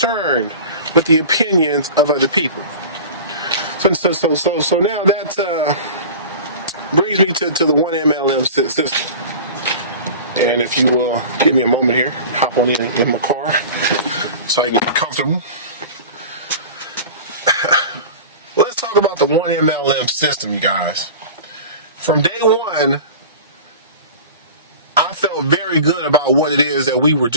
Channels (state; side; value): inverted; both; correlation -0.36